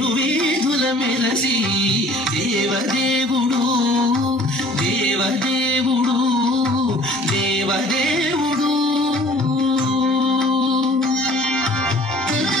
మెరసి దేవదేవుడు దేవదేవుడు దేవదేవుడు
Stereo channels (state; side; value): normal; both; correlation 0.51